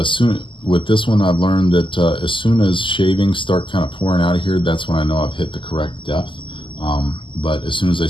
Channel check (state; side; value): late; right; 0.25 ms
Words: with this one I've learned that as soon as shavings start kind of pouring out of here, that's when I know I've hit the correct depth. But as soon as they